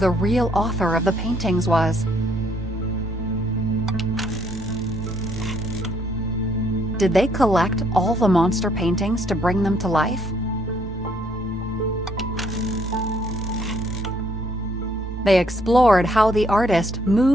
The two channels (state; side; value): normal; both; correlation 0.67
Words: real author of the paintings was. Did they collect all the monster paintings to bring them to life? They explored how the artist